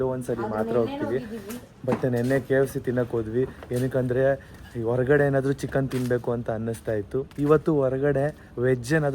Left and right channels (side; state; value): both; identical; correlation 1.00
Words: ಮಾತ್ರ ಹೋಗ್ತೀವಿ. ಬಟ್ ನೆನ್ನೆ KFC ತಿನ್ನಕ್ ಹೋದ್ವಿ. ಏನಕ್ಕಂದ್ರೆ ಹೊರಗಡೆ ಏನಾದ್ರು ಚಿಕನ್ ತಿನ್ಬೇಕು ಅಂತ ಅನ್ನಿಸ್ತಾ ಇತ್ತು. ಇವತ್ತು ಹೊರಗಡೆ ವೆಜ್